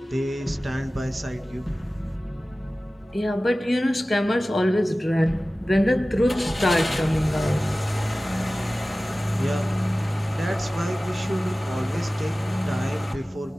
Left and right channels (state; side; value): normal; both; correlation 0.96